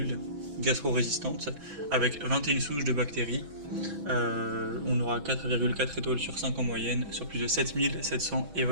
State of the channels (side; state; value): left; late; 6.2 ms